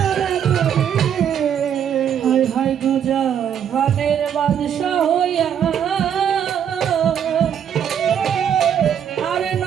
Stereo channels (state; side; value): quieter; left; 8.8 dB